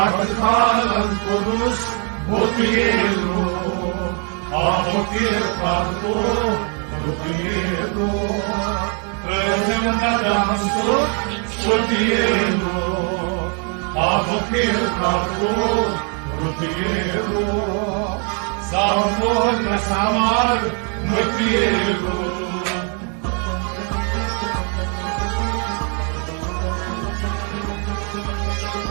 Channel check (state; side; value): quieter; left; 39.3 dB